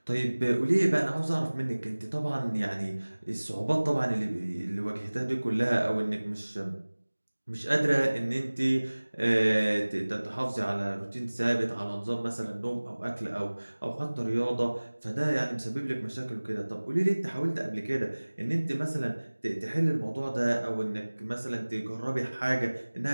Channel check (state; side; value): inverted; both; correlation -1.00